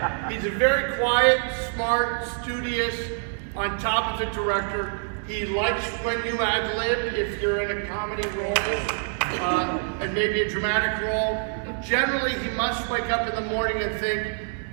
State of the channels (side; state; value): left; silent; digital silence